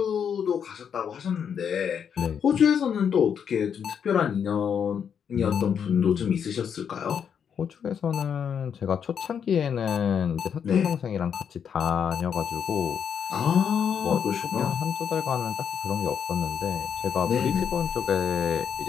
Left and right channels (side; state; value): right; quieter; 7.7 dB